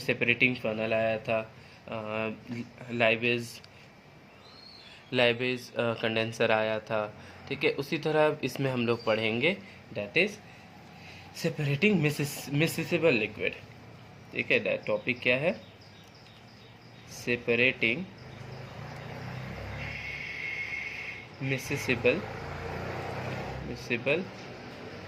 funnel आया था, लाइबेज कंडेंसर आया था। ठीक है, उसी तरह इसमें हम लोग पढ़ेंगे that is separating miscible liquid. ठीक है, टॉपिक क्या है? Separating miscible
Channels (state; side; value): identical; both; correlation 1.00